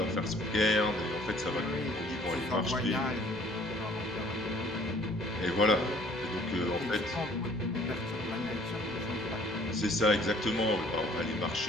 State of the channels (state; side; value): normal; both; correlation 0.57